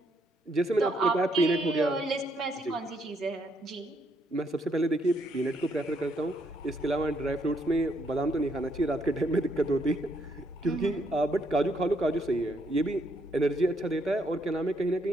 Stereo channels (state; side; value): normal; both; correlation 0.73